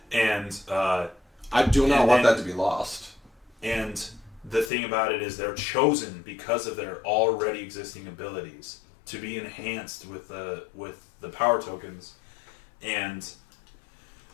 and I do not and want then- that to be lost. and the thing about it is they're chosen because of their already existing abilities to be enhanced with the power tokens, and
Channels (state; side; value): drops out; right; at 4.7 s